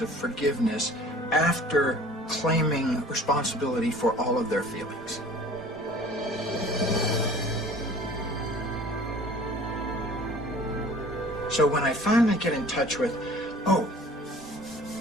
of forgiveness after claiming responsibility for all of their feelings. So when I finally get in touch with, oh,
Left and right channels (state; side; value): normal; both; correlation 0.48